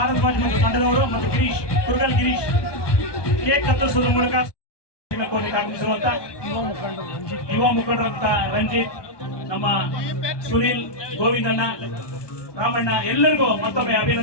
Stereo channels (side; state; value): right; late; 1.2 ms